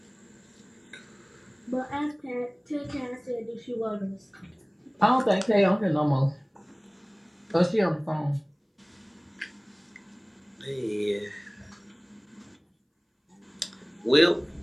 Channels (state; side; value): identical; both; correlation 1.00